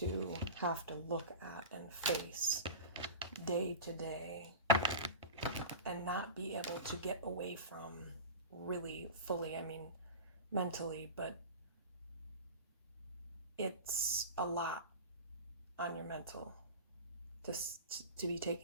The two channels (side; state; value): both; inverted; correlation -0.30